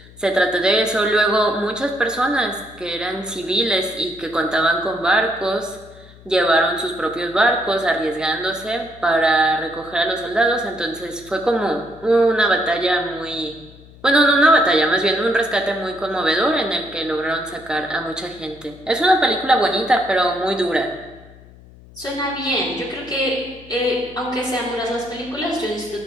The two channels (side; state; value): left; noise; hum, 22 dB below the sound